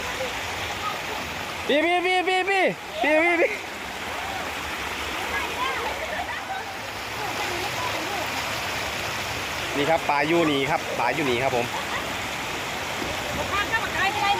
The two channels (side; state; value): both; identical; correlation 1.00